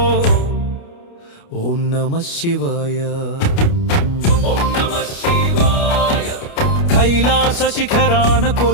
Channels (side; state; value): right; late; 29 ms